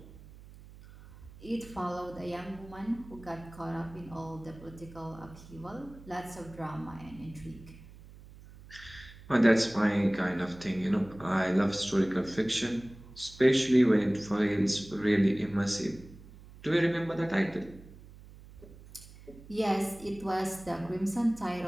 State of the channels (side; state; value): right; noise; hum, 19 dB below the sound